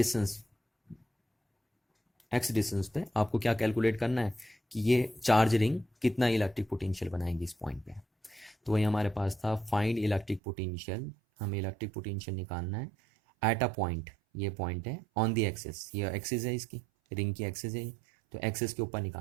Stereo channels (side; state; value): left; drops out; at 10.4 s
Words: डिस्टेंस पे आपको क्या कैलकुलेट करना है कि ये चार्ज रिंग कितना इलेक्ट्रिक पोटेंशियल बनाएगी इस पॉइंट पे। तो वही हमारे पास था, फाइंड इलेक्ट्रिक पोटेंशियल, हमें इलेक्ट्रिक पोटेंशियल निकालना है एट अ पॉइंट, ये पॉइंट है ऑन द एक्सिस, ये एक्सिस है इसकी रिंग की एक्सिस है, तो एक्सिस के ऊपर